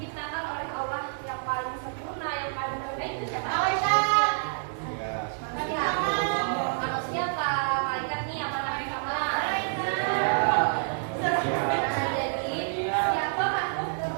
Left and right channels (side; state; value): left; silent; digital silence